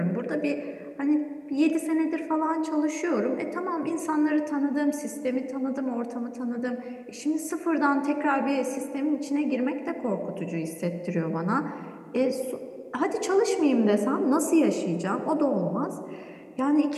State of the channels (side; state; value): both; identical; correlation 1.00